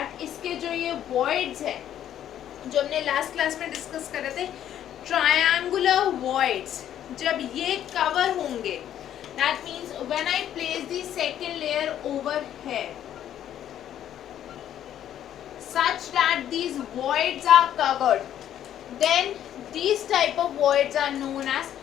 इसके जो ये voids है जो हमने last class में discuss कर रहे थे, ट्रायंगुलर voids, जब ये कवर होंगे, that means when I place the second layer over here such that these voids are covered, then these type of voids are known as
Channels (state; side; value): quieter; right; 10.8 dB